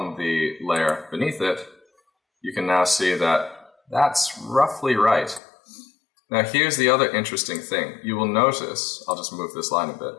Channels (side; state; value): right; drops out; at 5.4 s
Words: the layer beneath it, you can now see that that's roughly right. Now here's the other interesting thing. You will notice, I'll just move this line a bit.